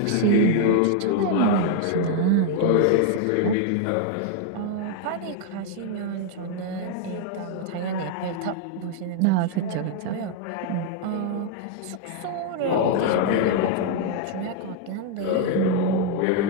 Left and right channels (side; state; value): both; different; correlation 0.00